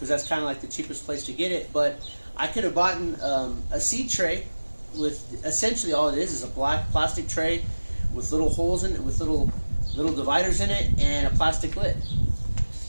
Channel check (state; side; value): inverted; both; correlation -1.00